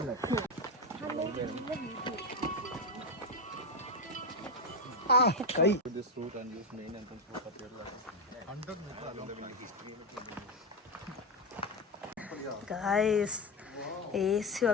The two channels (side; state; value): both; normal; correlation 0.11